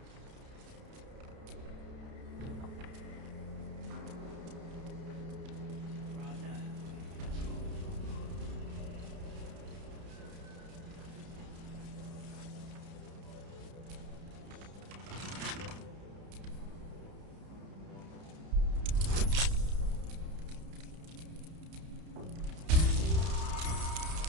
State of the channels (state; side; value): late; left; 31 ms